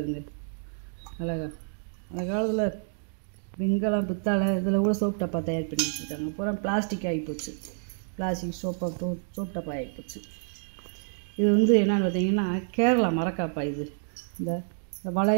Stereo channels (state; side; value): silent; left; digital silence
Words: அழகா. அந்த காலத்தில் வெங்கலம் பித்தளை இதில் கூட சோப் டப்பா தயார் பண்ணி வச்சுருக்காங்க. பூரா பிளாஸ்டிக் ஆகிப்போச்சு. பிளாஸ்டிக் சோப் டப்பா ஆகிப்போச்சு. இது வந்து என்னென்னு பார்த்தீங்கன்னா கேரளா மரக்காப்பா. இது இந்த